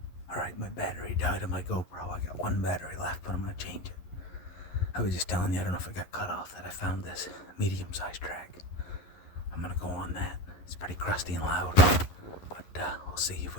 Alright, my battery died on my GoPro. I got one battery left, but I'm gonna change it. I was just telling you, I don't know if it got cut off, that I found this medium-sized track. I'm gonna go on that. It's pretty crusty and loud, but we'll see if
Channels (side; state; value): right; late; 11 ms